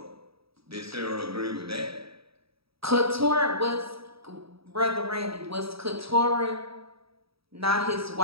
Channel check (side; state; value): left; late; 0.76 ms